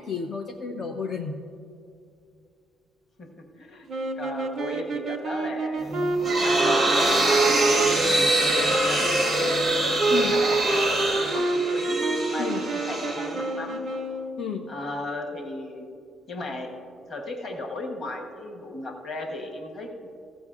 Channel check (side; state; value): both; normal; correlation 0.78